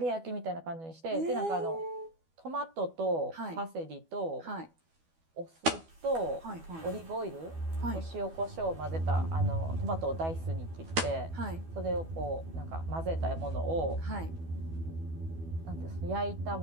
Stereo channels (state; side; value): late; left; 12 ms